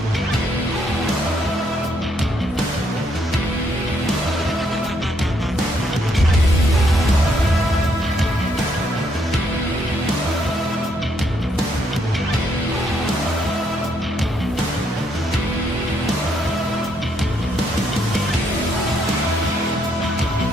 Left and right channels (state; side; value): normal; both; correlation 0.73